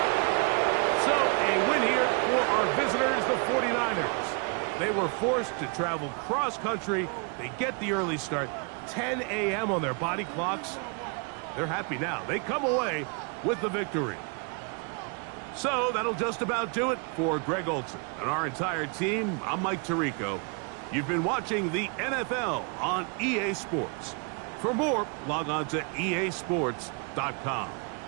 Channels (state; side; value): quieter; left; 36.0 dB